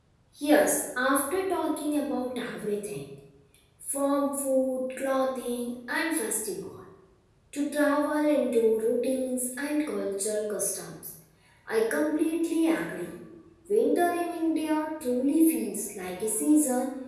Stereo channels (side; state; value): both; identical; correlation 1.00